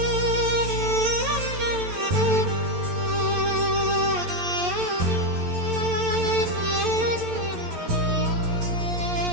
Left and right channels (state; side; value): late; left; 11 ms